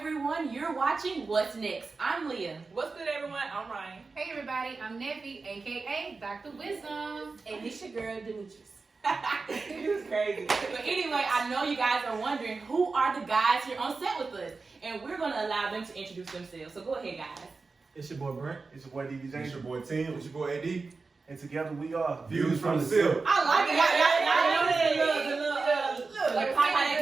You're watching What's Next. I'm Liyah. What's good, everyone? I'm Ry'n. Hey, everybody. I'm Neffy, a.k.a. Dr. Wisdom. And it's your girl, Demetris. It was crazy. But anyway, I know you guys are wondering who are the guys here on set with us. And we're going to allow them to introduce themselves. So go ahead, guys. It's your boy Brent. It's your boy DBJ. It's your boy Tim. It's your boy AD. And together we are Views from the Sipp. I like it. Y'all notice the little like pop out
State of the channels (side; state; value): left; quieter; 4.1 dB